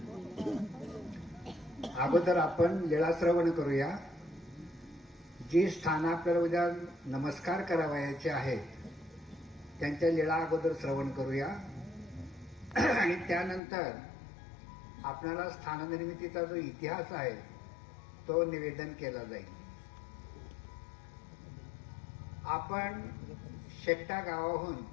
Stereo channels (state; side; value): drops out; right; at 13.6 s